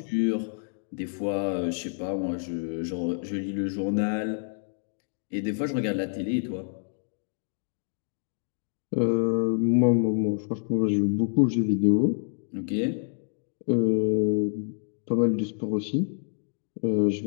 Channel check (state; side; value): silent; right; digital silence